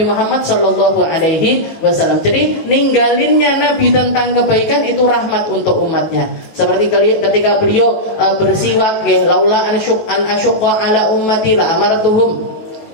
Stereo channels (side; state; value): right; late; 19 ms